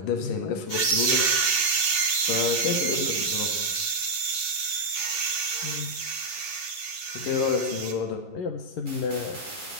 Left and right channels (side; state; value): right; late; 11 ms